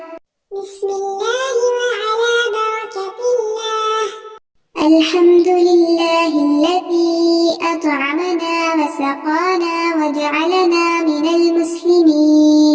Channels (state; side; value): identical; both; correlation 1.00